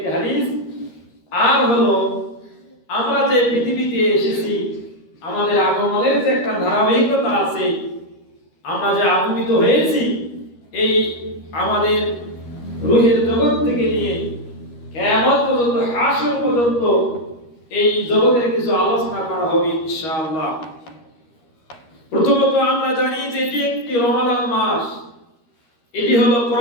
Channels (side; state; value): right; late; 13 ms